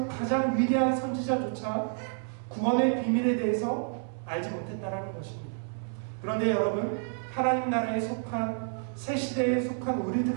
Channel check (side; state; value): left; silent; 58 dB below the other